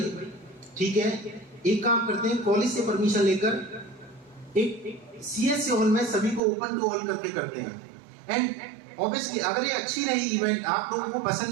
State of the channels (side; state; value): left; drops out; at 6.4 s